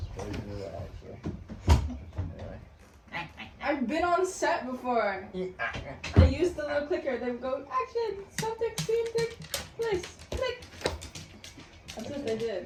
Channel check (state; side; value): identical; both; correlation 1.00